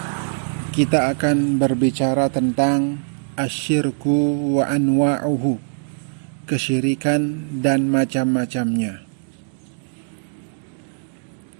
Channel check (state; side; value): silent; left; digital silence